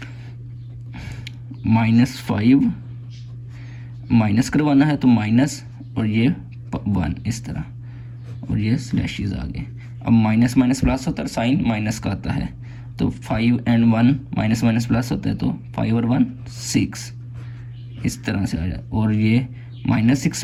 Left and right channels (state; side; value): identical; both; correlation 1.00